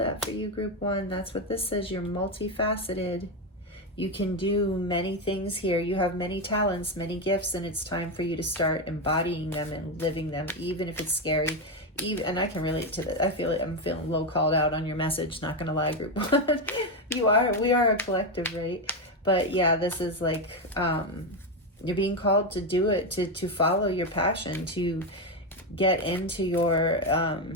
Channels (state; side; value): normal; both; correlation 0.09